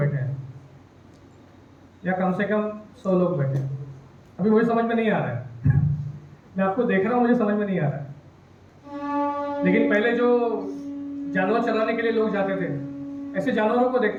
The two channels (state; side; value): identical; both; correlation 1.00